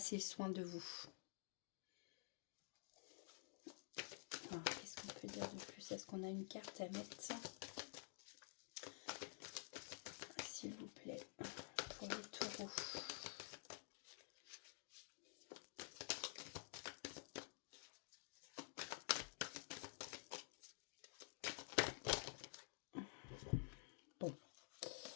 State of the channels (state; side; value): silent; right; digital silence